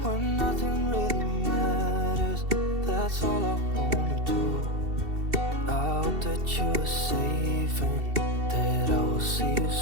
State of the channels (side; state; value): left; late; 2.7 ms